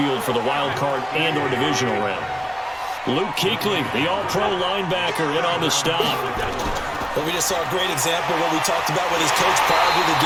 for the wild card and or divisional round. Luke Kuechly, the all-pro linebacker, in on the stop. But we just saw a great example of what we talked about with his coach prior to the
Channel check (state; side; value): identical; both; correlation 1.00